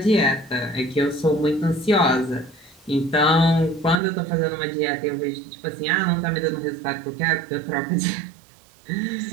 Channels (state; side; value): drops out; left; at 4.0 s